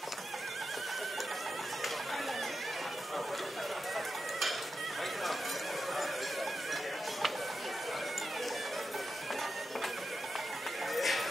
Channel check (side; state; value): both; normal; correlation 0.89